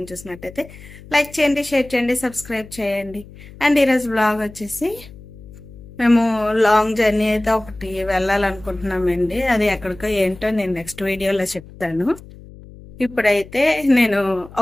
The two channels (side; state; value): left; noise; hum, 19 dB below the sound